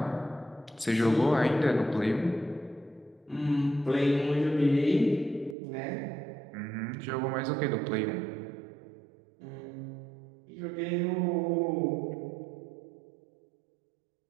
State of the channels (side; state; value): left; drops out; at 5.6 s